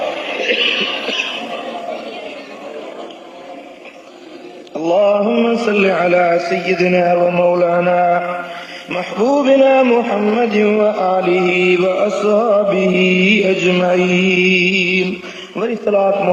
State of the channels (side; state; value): both; identical; correlation 1.00